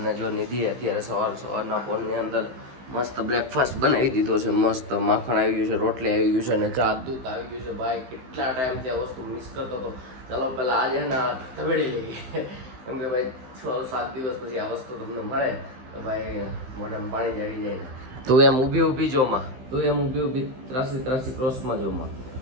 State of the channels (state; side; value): late; left; 15 ms